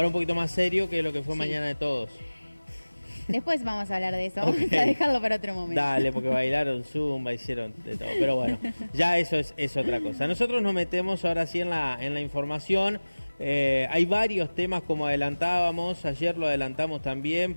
un poquito más serio que lo que fue Sí. Mañana de Todos. Después vamos a hablar de eso, Okay. vamos a dejarlo para otro momento. Dale, porque bailaron zumba, hicieron de todo. Pero bueno, ya eso es otra cosa. Nosotros nos metemos ahora sí en la información. Hay varios temas, como adelantábamos, ayer lo adelantamos también,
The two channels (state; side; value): inverted; both; correlation -1.00